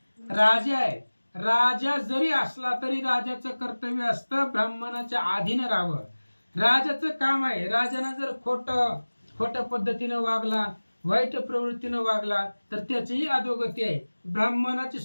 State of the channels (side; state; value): both; inverted; correlation -1.00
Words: राजा आहे, राजा जरी असला तरी राजाचं कर्तव्य असतं ब्राह्मणाच्या अधीन राहावं. राजाचं काम आहे. राजानं जर खोट्या पद्धतीनं वागला, वाईट प्रवृत्तीनं वागला तर त्याचीही अधोगती आहे. ब्राह्मणाची